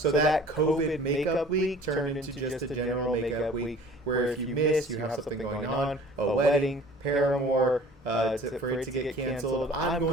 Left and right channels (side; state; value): both; normal; correlation 0.47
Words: that COVID makeup week turned into just a general makeup week where if you miss, you have something going on, a wedding, Paramore, for it to get canceled. I'm